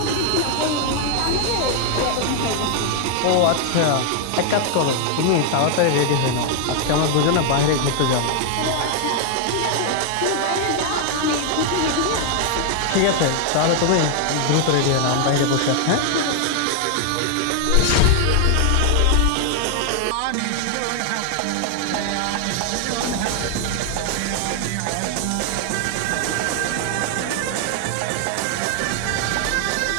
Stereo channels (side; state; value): both; different; correlation 0.00